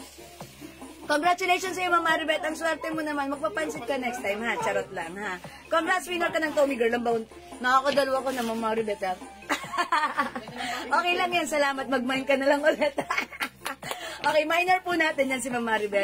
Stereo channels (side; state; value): both; identical; correlation 1.00